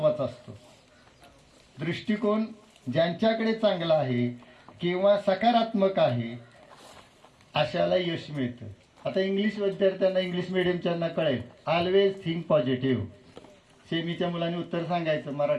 असतो. दृष्टिकोन ज्यांच्याकडे चांगला आहे किंवा सकारात्मक आहे अशाला यश मिळतं. आता इंग्लिश विद्यार्थ्यांना, इंग्लिश मिडियमच्यांना कळेल, ऑलवेज थिंक पॉझिटिव्ह. सेमीच्या मुलांनी उत्तर सांगायचं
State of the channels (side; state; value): both; identical; correlation 1.00